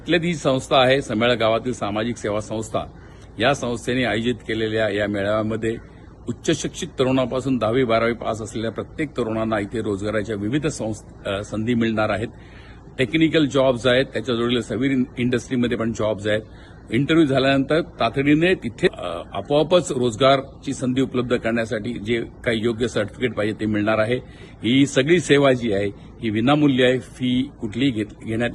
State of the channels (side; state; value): both; identical; correlation 1.00